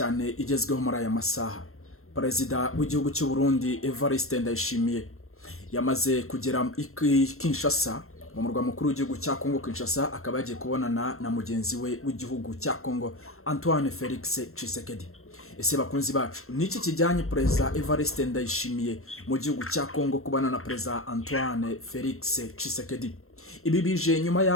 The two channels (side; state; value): right; late; 0.62 ms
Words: igezweho muri aya masaha. Perezida w'igihugu cy'u Burundi Evariste Ndayishimiye yamaze kugera Kinshasa, mu murwa mukuru w'igihugu cya Kongo Kinshasa, akaba yagiye kubonana na mugenzi we w'igihugu cya Kongo Antoine Felix Tshisekedi. Ese bakunzi bacu, niki kijyanye Perezida Evariste Ndayishimiye mu gihugu cya Kongo kubana na Perezida Antoine Felix Tshisekedi? Ibi bije nyuma